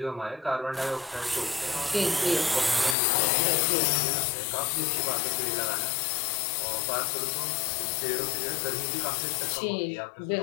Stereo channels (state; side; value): drops out; right; at 3.0 s